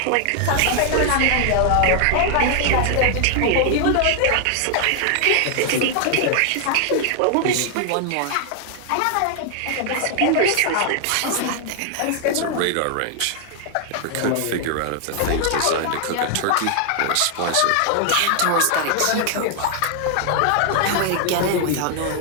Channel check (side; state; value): both; different; correlation 0.00